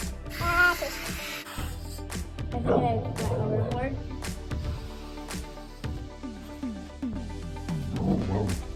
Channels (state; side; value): identical; both; correlation 1.00